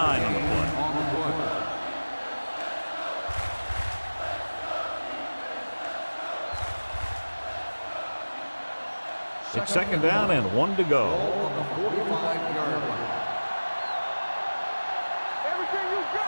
the play. It's second down and 1 to go. On the 45-yard line. Everything you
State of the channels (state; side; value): inverted; both; correlation -1.00